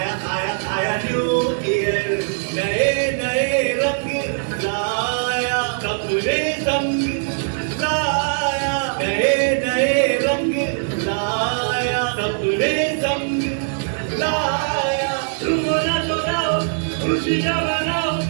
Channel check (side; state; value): left; silent; digital silence